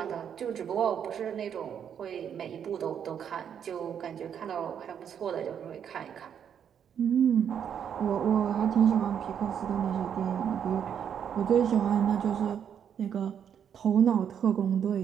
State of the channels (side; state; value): left; quieter; 8.4 dB